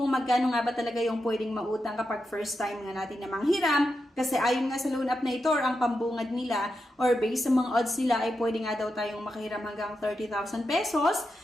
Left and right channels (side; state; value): both; normal; correlation 0.87